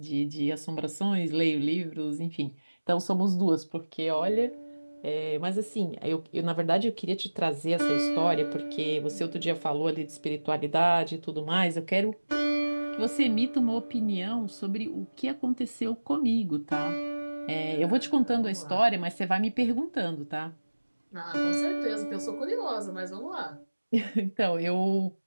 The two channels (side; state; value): both; inverted; correlation -1.00